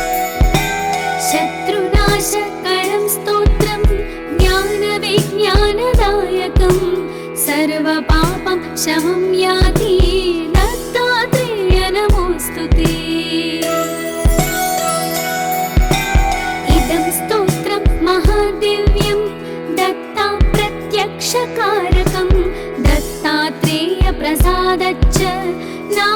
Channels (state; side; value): identical; both; correlation 1.00